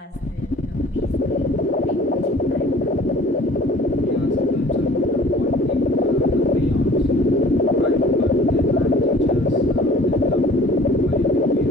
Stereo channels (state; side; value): normal; both; correlation 0.50